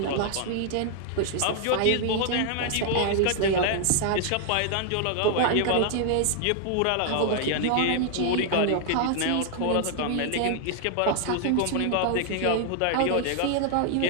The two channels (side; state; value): both; different; correlation 0.00